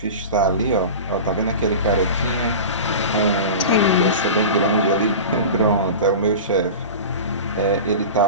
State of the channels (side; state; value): both; inverted; correlation -0.31